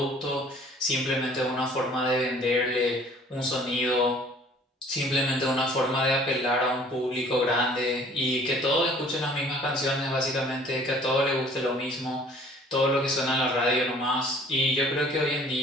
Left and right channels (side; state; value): both; normal; correlation 0.53